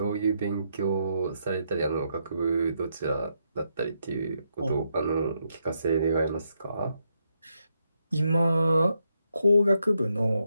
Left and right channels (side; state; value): both; inverted; correlation -0.79